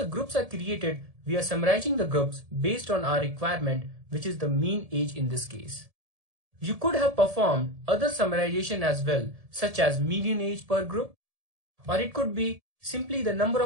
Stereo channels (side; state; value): left; late; 1.7 ms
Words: groups are created, we are summarizing the groups based on our requirement, which is the mean age in this case. You could have performed other summarization as well, such as median age per group, or it could be simply the number